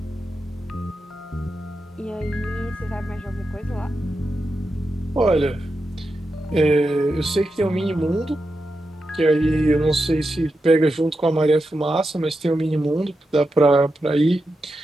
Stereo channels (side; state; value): both; normal; correlation 0.89